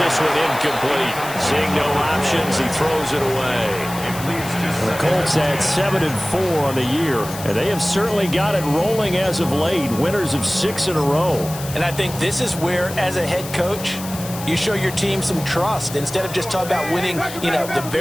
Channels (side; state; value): left; noise; hiss, 12 dB below the sound